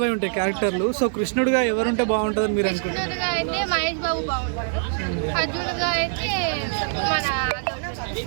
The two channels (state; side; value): silent; left; digital silence